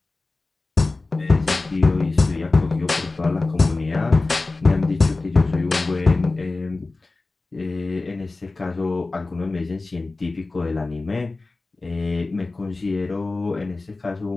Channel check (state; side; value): quieter; right; 3.4 dB